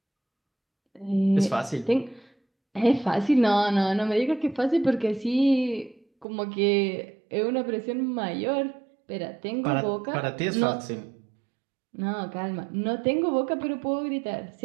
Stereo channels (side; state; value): left; drops out; at 6.2 s